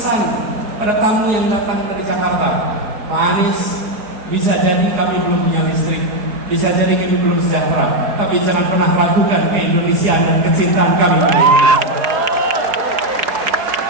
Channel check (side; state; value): left; late; 4.8 ms